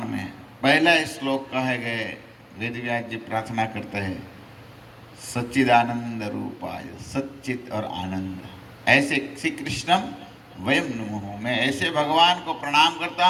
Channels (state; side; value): identical; both; correlation 1.00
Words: में पहला श्लोक कहे गए, वेदव्यास जी प्रार्थना करते हैं, सच्चिदानंद रूपाय, सच्चित और आनंद, ऐसे श्री कृष्णम वयम नमः। मैं ऐसे भगवान को प्रणाम करता